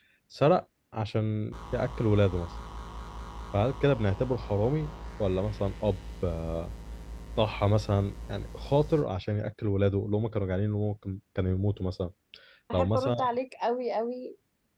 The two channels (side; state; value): both; identical; correlation 1.00